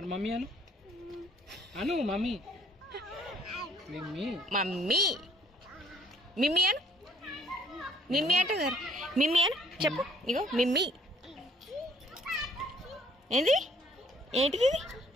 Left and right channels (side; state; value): both; normal; correlation 0.61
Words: మమ్మీ అను అను మమ్మీ మమ్మీ మిమ్మీ అను మిమ్మీ అంటే మిమ్మీ అను చెప్పు ఇగో మిమ్మీ ఏంది ఏంటిది ఇది